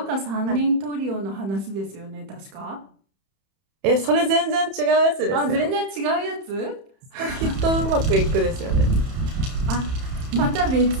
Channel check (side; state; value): left; late; 31 ms